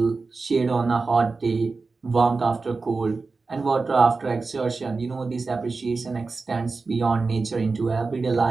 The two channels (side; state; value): left; quieter; 4.1 dB